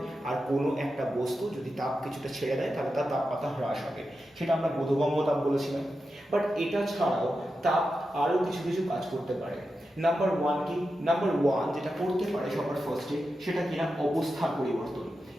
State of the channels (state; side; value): normal; both; correlation 0.90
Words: আর কোনো একটা বস্তু যদি তাপ কিছুটা ছেড়ে দেয় তাহলে তার তাপমাত্রা হ্রাস হবে। সেটা আমরা বোধগম্য তাপ বলেছিলাম। বাট এটা ছাড়াও তাপ আরও কিছু কিছু কাজ করতে পারে। নাম্বার ওয়ান যেটা করতে পারে সবার ফার্স্টে সেটা কিনা অবস্থার পরিবর্তন,